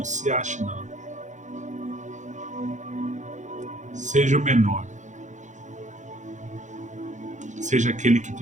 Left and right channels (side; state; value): left; late; 0.35 ms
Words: se ache, não. Seja o menor. Seja aquele que